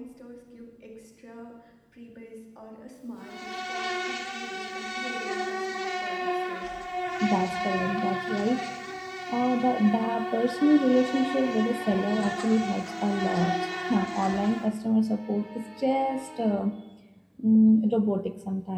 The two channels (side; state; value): both; identical; correlation 1.00